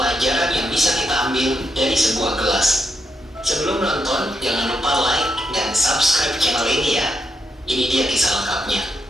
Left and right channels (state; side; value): normal; both; correlation 0.81